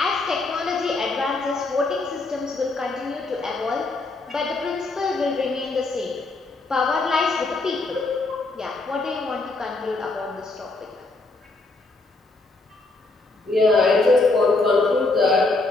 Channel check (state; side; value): quieter; right; 3.3 dB